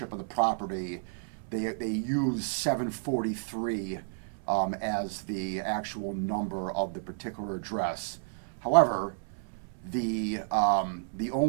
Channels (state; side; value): silent; left; 57 dB below the other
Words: of the property, they use 743 as the actual number of the particular address. However, the